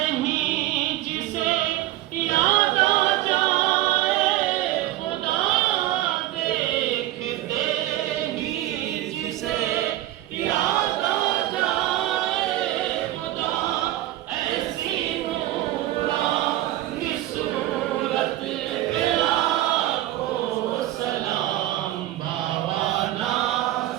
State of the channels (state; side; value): quieter; left; 15.1 dB